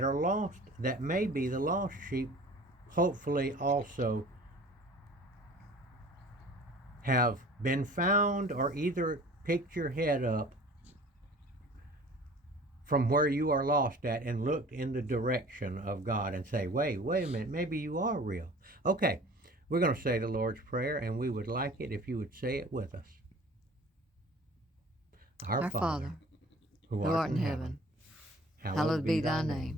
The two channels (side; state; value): both; normal; correlation 0.46